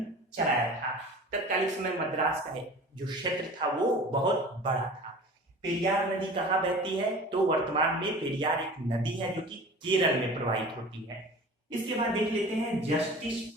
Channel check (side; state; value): both; normal; correlation 0.40